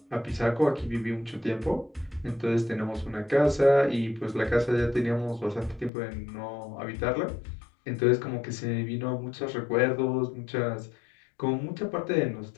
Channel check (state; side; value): drops out; right; at 5.9 s